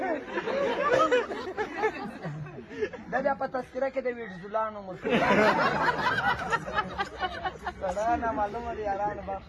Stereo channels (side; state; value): both; identical; correlation 1.00